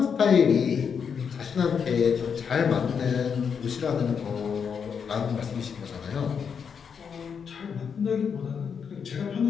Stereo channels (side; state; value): right; quieter; 6.7 dB